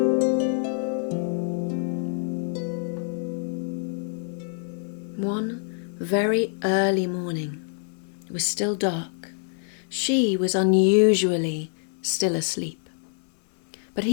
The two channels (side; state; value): right; silent; digital silence